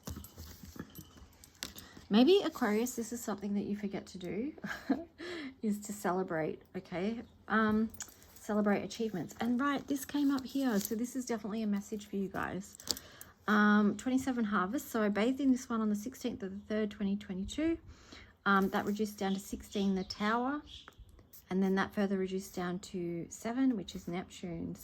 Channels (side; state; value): both; identical; correlation 1.00